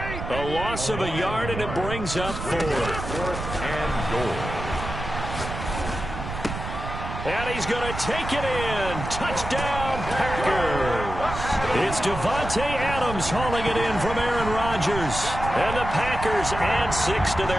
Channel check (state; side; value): noise; right; rumble, 7 dB below the sound